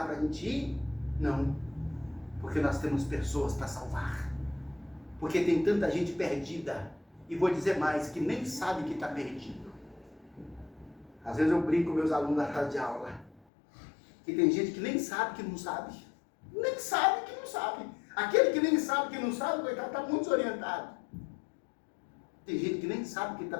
para a gente ir? Não, porque nós temos pessoas para salvar. Porque tem tanta gente perdida, e vou dizer mais, que nem sabe que está perdido. Às vezes eu brinco com meus alunos na sala de aula, que tem gente que nem sabe que não sabe. Nem sabe que não sabe. Aquele que nem sabe que não sabe, coitado, está muito desorientado. Tem gente que nem sabe que está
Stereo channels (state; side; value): drops out; right; at 13.4 s